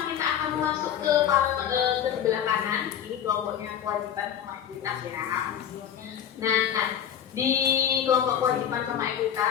kita akan masuk ke sebelah kanan. Ini kelompoknya kewajiban sama ekuitas ya. Nah, di kelompok kewajiban sama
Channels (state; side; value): quieter; right; 9.4 dB